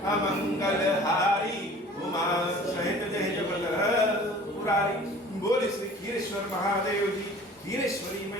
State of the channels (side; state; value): both; normal; correlation 0.46